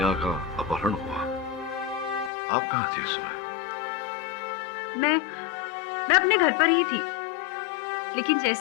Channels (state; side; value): drops out; right; at 2.3 s